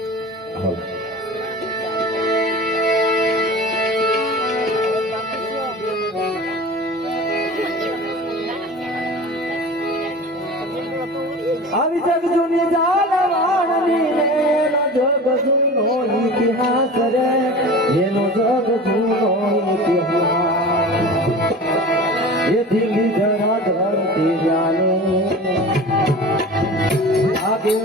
હાલ આવી જગ જૂની જાલવાણની એનો જગ જૂનો ઇતિહાસ રે, એનો જગ જૂનો ઇતિહાસ. એ દિલ્હી જરા ધરતી જાને આગે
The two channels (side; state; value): both; normal; correlation 0.36